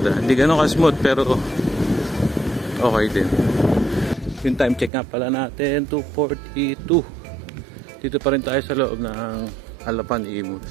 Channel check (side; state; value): left; drops out; at 4.9 s